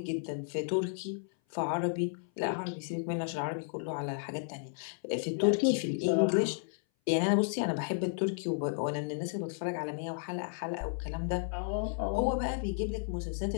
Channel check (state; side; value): silent; right; 56 dB below the other